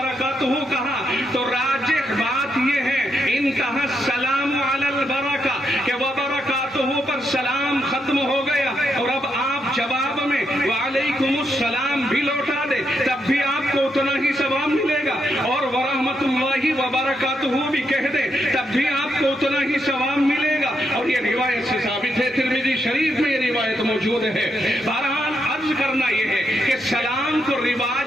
کہا تو راجح بات یہ ہے انتہا السلام علی البرکہ کہ وبرکاتہ پر سلام ختم ہو گیا، اور اب آپ جواب میں وعلیکم السلام بھی لوٹا دے تب بھی آپ کو اتنا ہی ثواب ملے گا، اور ورحمۃ اللہ وبرکاتہ بھی کہہ دے تب بھی آپ کو اتنا ہی ثواب ملے گا. اور یہ روایت سے ثابت ہے، ترمذی شریف میں یہ روایت موجود ہے. بہرحال عرض کرنا یہ ہے کہ سلام کو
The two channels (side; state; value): both; normal; correlation 0.80